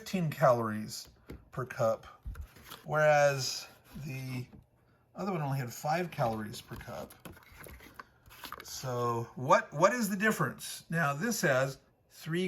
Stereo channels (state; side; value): identical; both; correlation 1.00